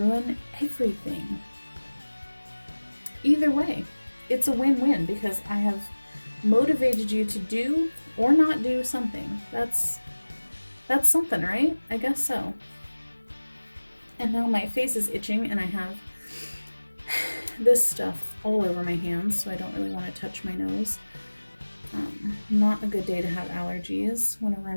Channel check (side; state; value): both; inverted; correlation -1.00